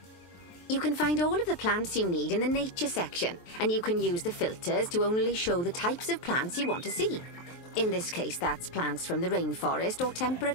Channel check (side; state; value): right; late; 23 ms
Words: You can find all of the plants you need in the Nature section, and you can use the filters to only show the types of plants you want to see. In this case, that's plants from the rainforest or